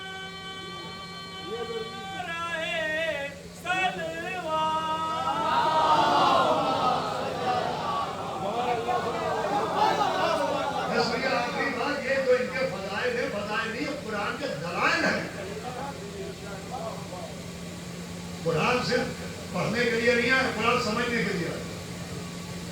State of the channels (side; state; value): both; identical; correlation 1.00